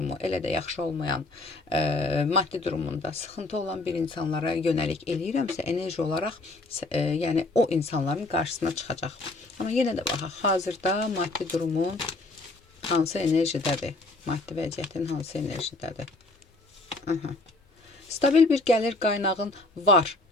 elə də yaxşı olmayan, maddi durumunda sıxıntı olan bir insanlara yönəlik eləyirəmsə, enerji olaraq yəni o insanların qarşısına çıxacaq. Amma yenə də baxaq, hazırda maddi durumun hansı enerjidədir? Maddi vəziyyətin hansı enerjidədir? Stabil bir gəlir qaynağın var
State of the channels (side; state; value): right; quieter; 3.0 dB